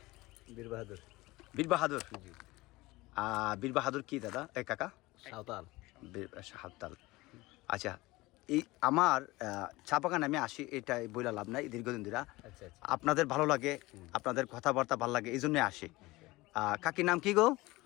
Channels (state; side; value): quieter; right; 20.6 dB